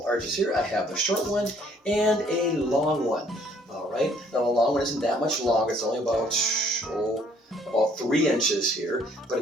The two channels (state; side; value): normal; both; correlation 0.62